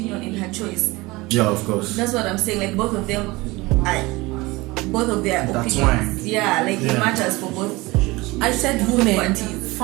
and her choice. Yeah, of course. That's what I'm saying. Like both of them, both of their That's opinions. Yeah, like Yeah. it matters for both. I said women Parties.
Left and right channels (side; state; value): left; quieter; 22.0 dB